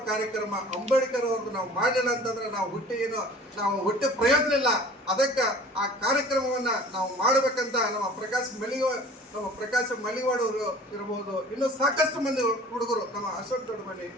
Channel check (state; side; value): normal; both; correlation 0.46